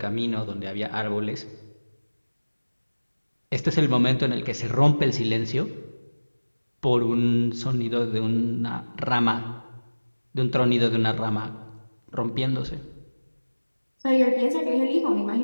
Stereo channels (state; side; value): inverted; both; correlation -1.00